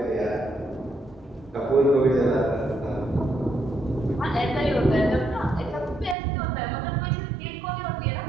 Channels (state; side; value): drops out; left; at 6.2 s